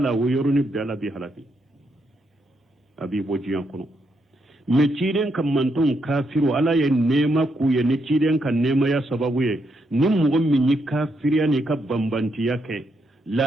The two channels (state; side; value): normal; both; correlation 0.79